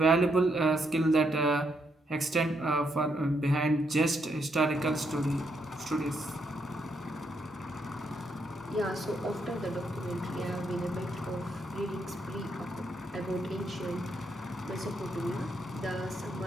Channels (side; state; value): both; normal; correlation 0.77